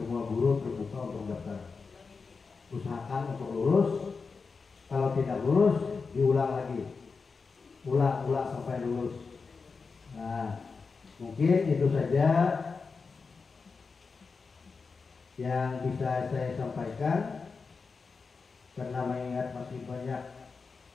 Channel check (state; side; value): quieter; right; 4.8 dB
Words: guru terbuka untuk daftar. Usahakan untuk lulus. Kalau tidak lulus, diulang lagi, ulang sampai lulus. Nah, mungkin itu saja yang bisa saya sampaikan. Karena mengingat masih banyak